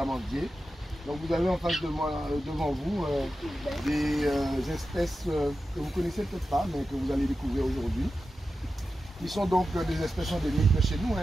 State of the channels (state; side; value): normal; both; correlation 0.92